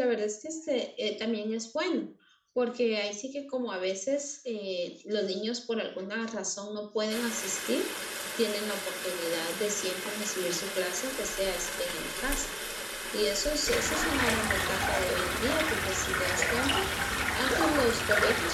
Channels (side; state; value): both; identical; correlation 1.00